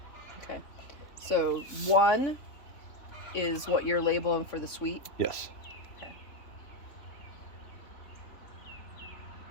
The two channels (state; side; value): late; right; 3.5 ms